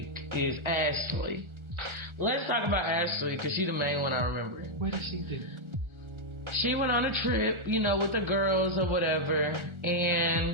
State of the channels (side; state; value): left; late; 1.4 ms